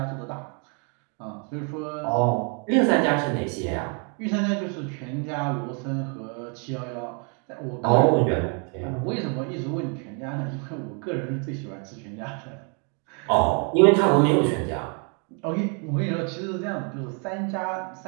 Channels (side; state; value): left; quieter; 37.6 dB